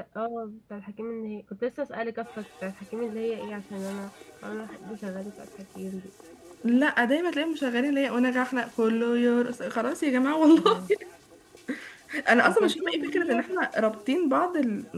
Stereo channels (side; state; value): both; identical; correlation 1.00